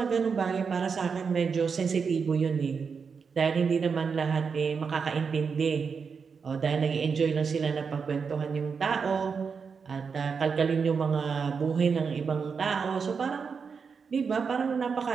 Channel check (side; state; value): left; quieter; 5.7 dB